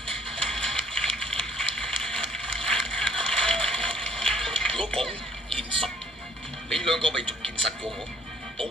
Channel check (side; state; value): both; normal; correlation 0.59